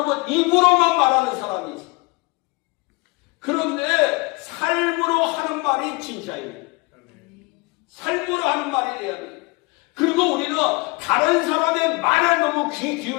입으로만 말하는 사람이 있어요. 그런데 삶으로 하는 말이 진짜입니다. 삶으로 하는 말이 돼야 돼요. 그리고 우리는 다른 사람의 말에 너무 귀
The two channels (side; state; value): right; quieter; 26.0 dB